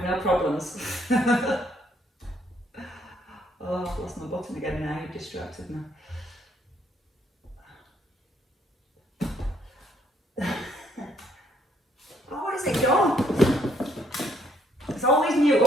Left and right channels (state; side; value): normal; both; correlation 0.69